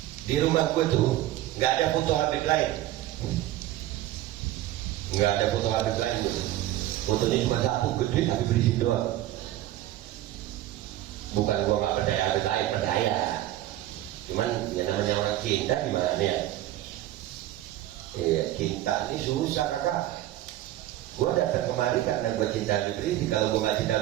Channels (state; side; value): quieter; left; 14.3 dB